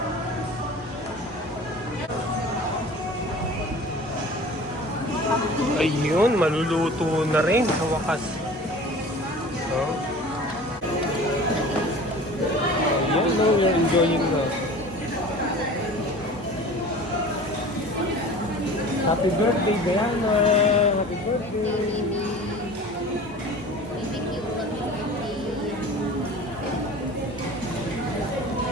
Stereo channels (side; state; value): both; normal; correlation 0.41